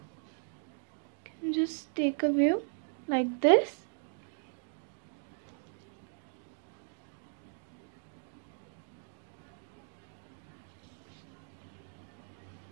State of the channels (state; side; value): silent; left; digital silence